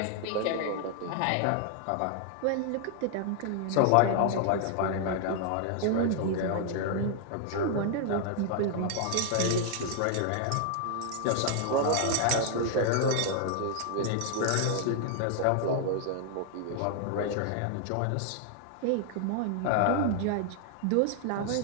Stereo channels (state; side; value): different; both; correlation 0.00